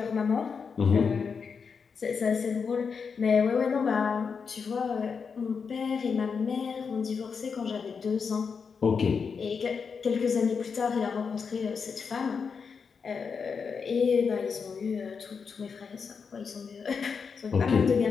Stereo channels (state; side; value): quieter; right; 5.8 dB